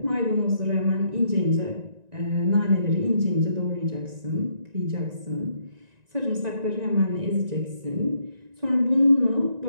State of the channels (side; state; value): left; late; 1.9 ms